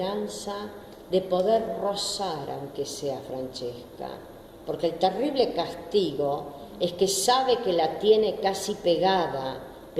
de poder rozar, aunque sea Francesca, porque el terrible castigo es que sabe que la tiene casi pegada,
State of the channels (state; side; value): identical; both; correlation 1.00